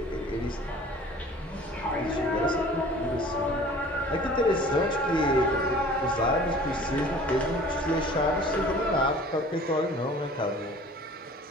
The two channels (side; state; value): both; normal; correlation 0.47